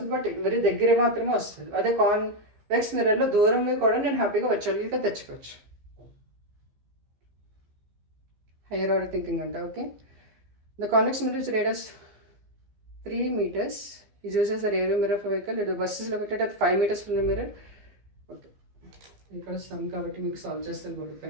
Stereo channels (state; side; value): late; left; 14 ms